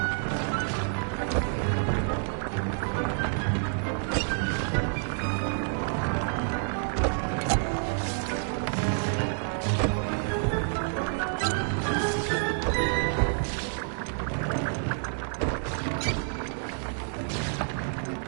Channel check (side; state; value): left; silent; 59 dB below the other